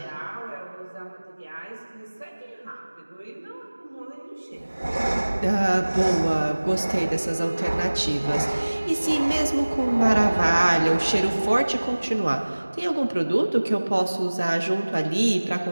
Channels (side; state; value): both; inverted; correlation -1.00